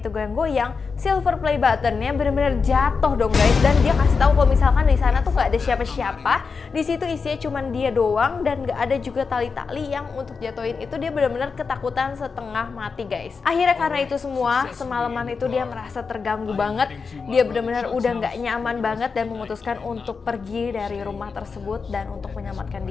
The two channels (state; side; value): quieter; right; 5.1 dB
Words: itu goyang-goyang, silver play buttonnya benar-benar jatuh dong guys. Dan dia kasih tahu kalau misalkan di sana tuh nggak ada siapa-siapa, di situ isinya cuma dia doang dan nggak ada juga tali-tali yang untuk jatuhin itu. Dia benar-benar ketakutan setengah mati guys. Akhirnya karena itu semua, semalaman itu dia merasa terganggu banget, dia benar-benar udah nggak nyaman banget dan memutuskan untuk pergi dari rumah tersebut dan untuk menyelamatkan